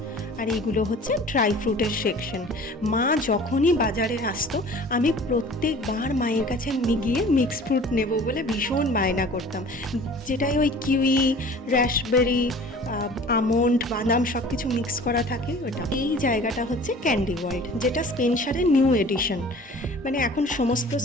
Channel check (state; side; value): normal; both; correlation 0.45